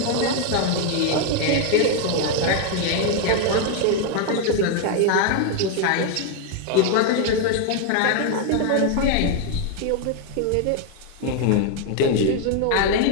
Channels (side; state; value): both; different; correlation 0.01